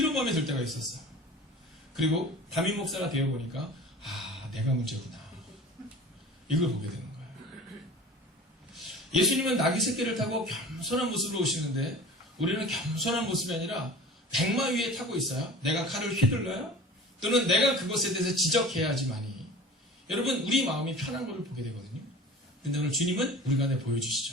마음이 들 때가 있었어요. 그리고 담임 목사가 되어보니까 내가 문제구나. 이걸 보게 되는 거예요. 예수님은 나귀 새끼를 타고 겸손한 모습으로 오시는데 우리는 겸손한 모습이 아니라 백마 위에 타고 있어요. 내가 칼을 휘둘러요? 또는 내가 그것에 대해서 지적해야지만이 여러분, 우리 마음이 편한 것을 보게 되거든요. 근데 오늘 주님은 우리 가운데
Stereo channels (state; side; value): normal; both; correlation 0.40